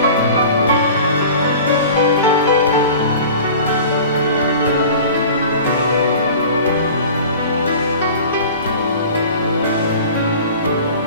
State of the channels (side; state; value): both; inverted; correlation -0.41